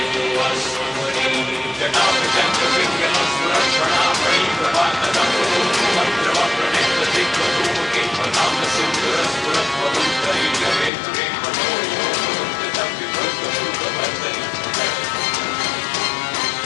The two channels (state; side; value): drops out; right; at 10.9 s